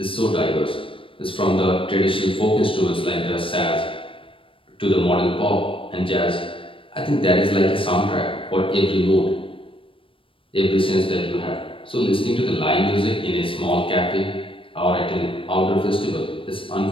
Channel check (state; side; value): late; right; 0.26 ms